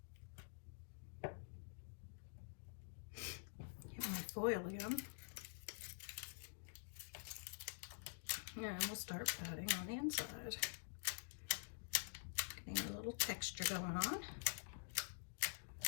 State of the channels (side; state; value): right; silent; digital silence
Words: Get my foil again. And we'll start patting on the inside. Getting a little texture going on.